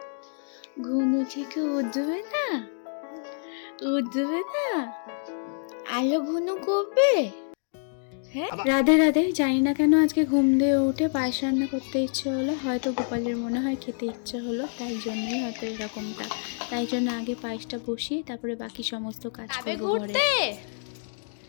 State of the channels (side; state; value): right; silent; 60 dB below the other